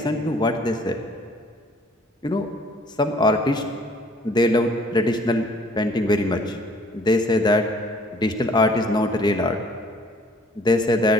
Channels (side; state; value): both; normal; correlation 0.57